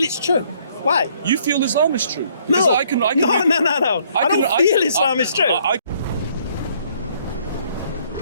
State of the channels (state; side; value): inverted; both; correlation -0.64